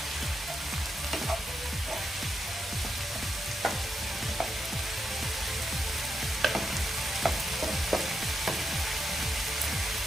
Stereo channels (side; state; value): both; normal; correlation 0.83